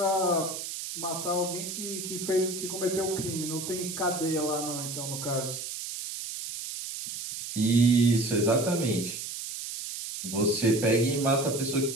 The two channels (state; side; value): noise; right; hiss, 7 dB below the sound